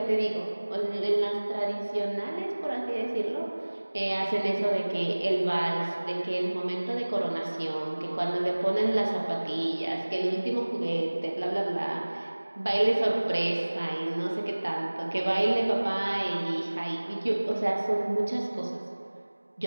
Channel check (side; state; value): both; inverted; correlation -1.00